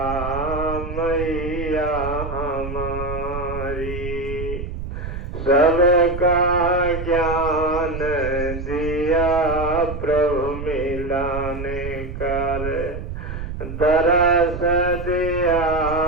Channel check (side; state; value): right; noise; rumble, 7 dB below the sound